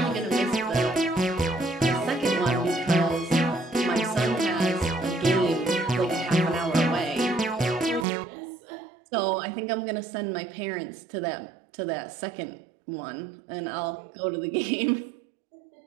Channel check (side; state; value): left; drops out; at 8.1 s